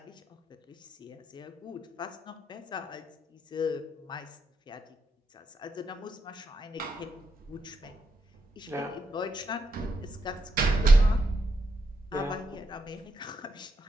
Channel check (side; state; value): both; normal; correlation 0.81